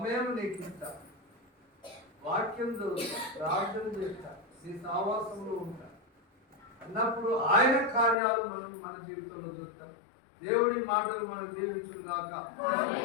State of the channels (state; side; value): drops out; right; at 8.2 s